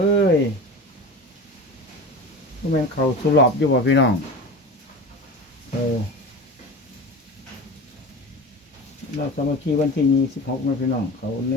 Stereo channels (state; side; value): normal; both; correlation 0.31